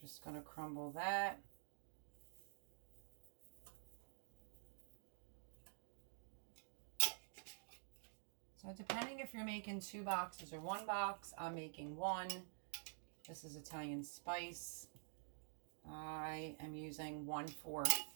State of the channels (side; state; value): left; silent; digital silence